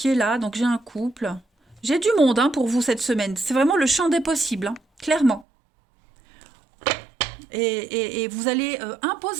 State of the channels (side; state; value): left; drops out; at 5.5 s